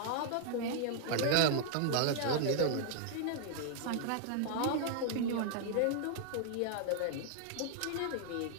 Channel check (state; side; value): different; both; correlation 0.00